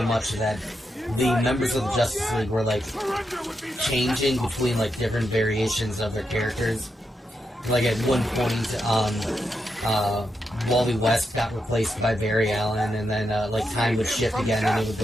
much that the members of the Justice League were like changing between like different variations of their characters. Like at one point, Wally West got replaced by Barry Allen, and then like time would shift again, and it would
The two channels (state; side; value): normal; both; correlation 0.85